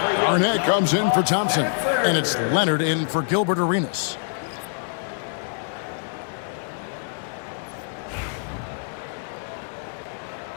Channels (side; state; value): right; silent; digital silence